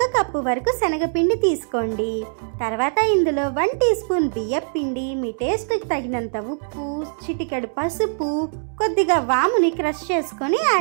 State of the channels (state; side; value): silent; left; 64 dB below the other